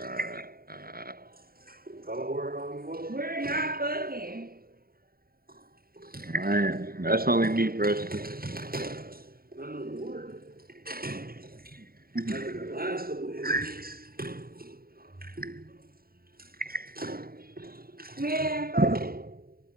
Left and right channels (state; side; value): late; left; 0.43 ms